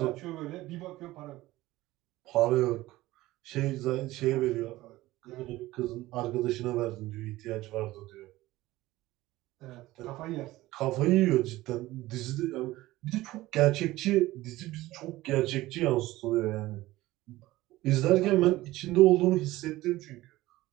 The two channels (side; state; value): left; quieter; 17.5 dB